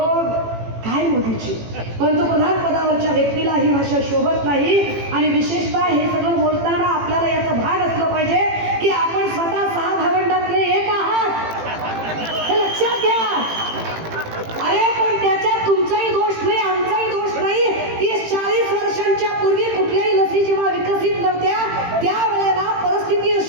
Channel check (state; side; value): late; left; 18 ms